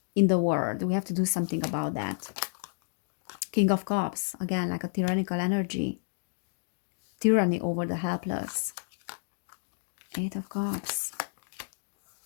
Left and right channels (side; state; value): right; silent; digital silence